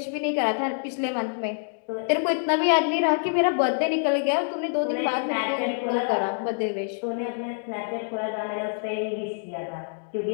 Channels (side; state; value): right; silent; digital silence